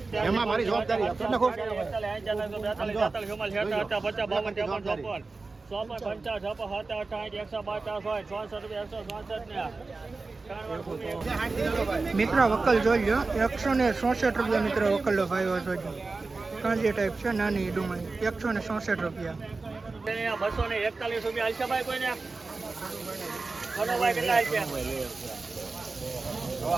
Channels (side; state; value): left; quieter; 3.8 dB